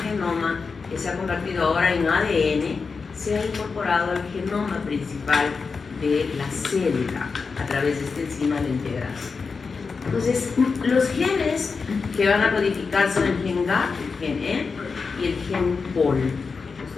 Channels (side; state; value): right; quieter; 4.9 dB